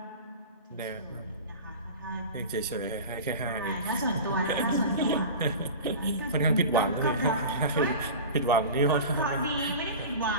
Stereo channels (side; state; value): both; inverted; correlation -0.32